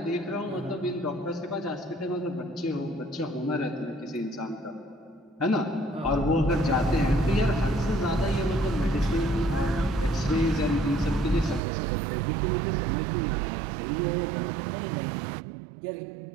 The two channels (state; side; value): drops out; left; at 11.6 s